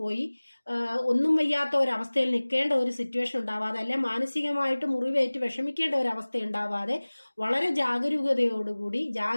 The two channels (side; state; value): both; inverted; correlation -1.00